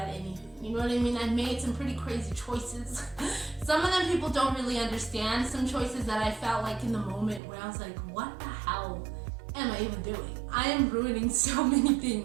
anything. You know what I mean? I made some pretty crazy choices. Some of them people don't really understand. Some choices that I felt like in the moment where I was like, what the hell am I even doing? I am ruining so many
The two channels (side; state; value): left; drops out; at 7.4 s